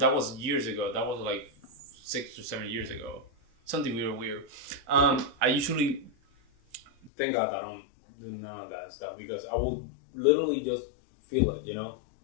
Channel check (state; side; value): drops out; right; at 7.1 s